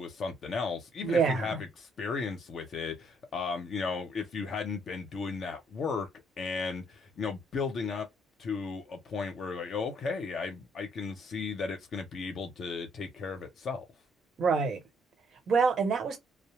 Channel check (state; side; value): normal; both; correlation 0.68